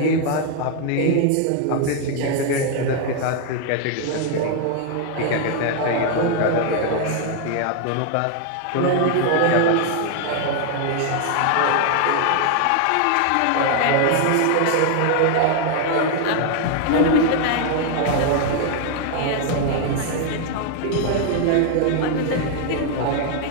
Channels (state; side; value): different; both; correlation 0.00